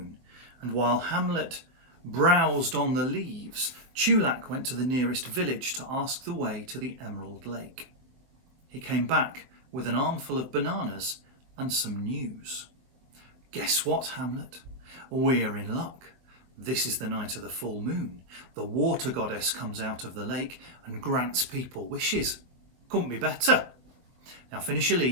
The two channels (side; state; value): left; late; 22 ms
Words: and while Hamlet browsed on the leaves, Chulac went to the nearest village to ask the way to the Emerald Lake. He came back with an armful of bananas and some news. Guess what, Hamlet? We're in luck. This is the night of the full moon. The water goddess comes out of the lake and grants people wishes. Couldn't be better. Now finish your